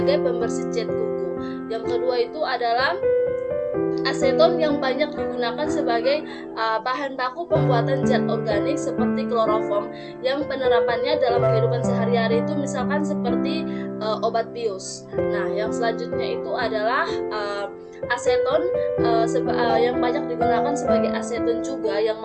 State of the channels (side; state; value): both; identical; correlation 1.00